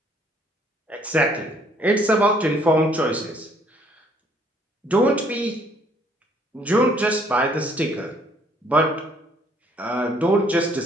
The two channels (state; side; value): normal; both; correlation 0.63